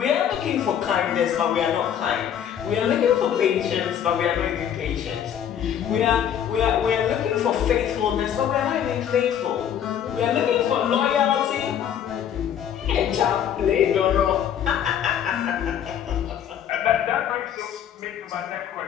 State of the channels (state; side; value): quieter; right; 9.4 dB